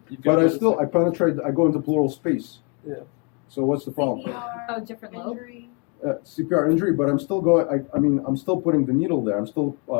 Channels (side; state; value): right; quieter; 33.5 dB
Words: But I penetrate. I go into pleural space. Yeah. So what's the problem? Oh, different lobe. CPR injury, but I'm still going. I'm still putting the needle there. I'm still